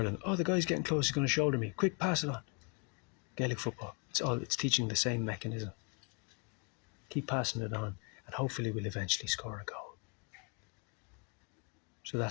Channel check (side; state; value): right; quieter; 32.4 dB